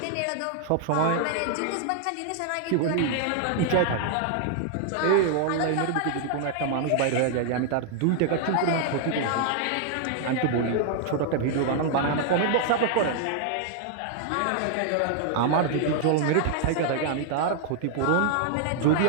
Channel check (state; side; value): different; both; correlation 0.00